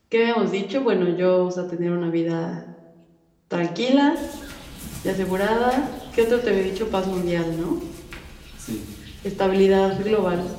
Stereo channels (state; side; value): identical; both; correlation 1.00